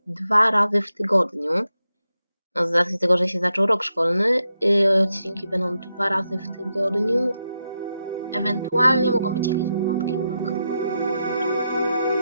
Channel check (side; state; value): both; inverted; correlation -0.86